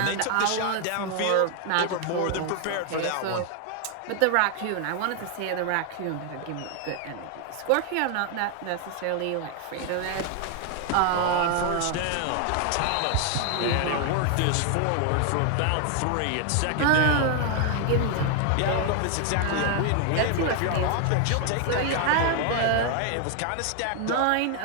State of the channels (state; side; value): different; both; correlation 0.00